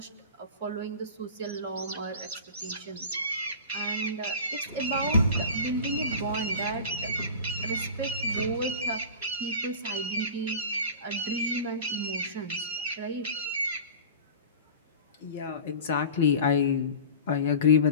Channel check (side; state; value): both; inverted; correlation -0.35